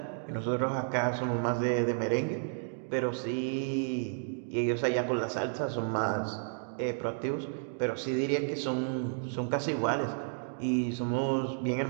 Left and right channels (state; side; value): silent; left; digital silence